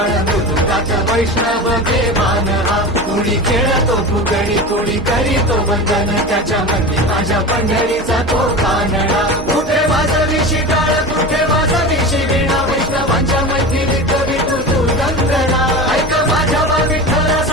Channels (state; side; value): normal; both; correlation 0.29